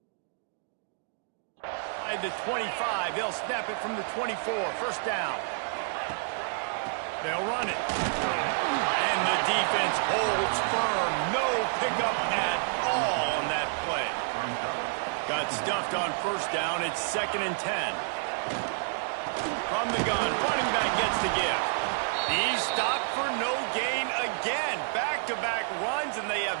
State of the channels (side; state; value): left; silent; digital silence